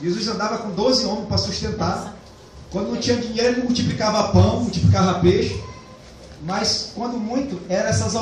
andava com 12 homens para sustentar. Quando não tinha dinheiro, ele multiplicava pão, multiplicava peixe. Mas quando muito, eram essas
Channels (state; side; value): identical; both; correlation 1.00